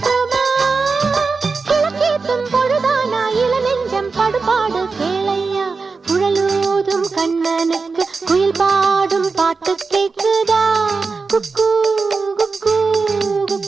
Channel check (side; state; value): left; quieter; 4.4 dB